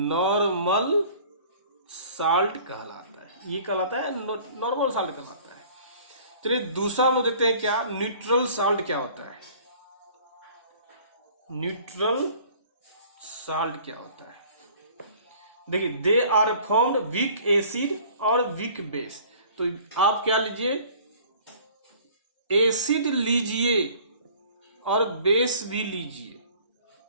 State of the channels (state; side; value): inverted; both; correlation -0.51